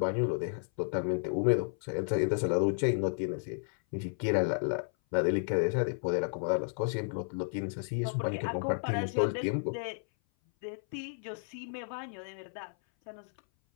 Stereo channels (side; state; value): right; silent; 56 dB below the other